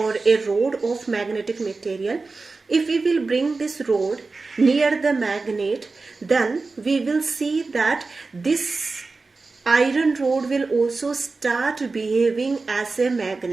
a rod of magnetic material. If we will bring this rod near the magnet, then we will see that this iron rod will also start behaving as a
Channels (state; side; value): quieter; left; 3.9 dB